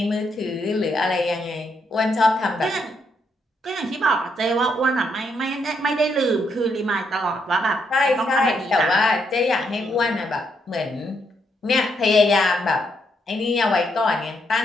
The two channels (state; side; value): normal; both; correlation 0.77